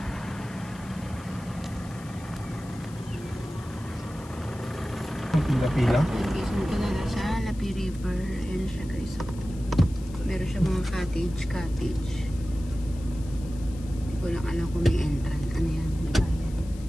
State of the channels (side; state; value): left; noise; hiss, 22 dB below the sound